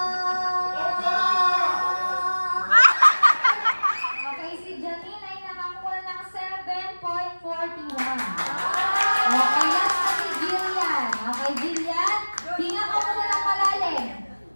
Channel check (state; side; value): inverted; both; correlation -1.00